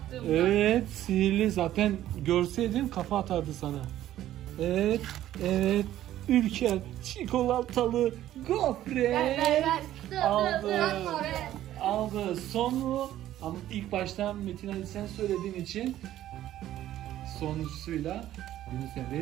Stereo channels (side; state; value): left; quieter; 13.1 dB